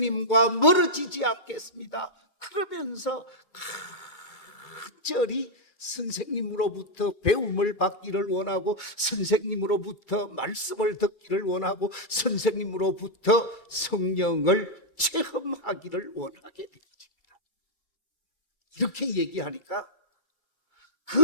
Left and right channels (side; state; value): right; late; 2.6 ms